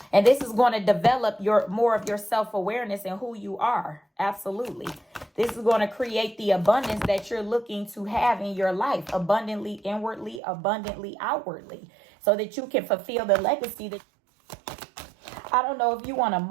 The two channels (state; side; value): drops out; left; at 10.4 s